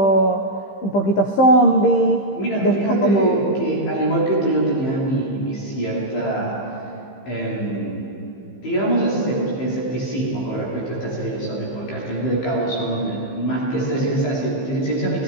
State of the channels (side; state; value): right; late; 15 ms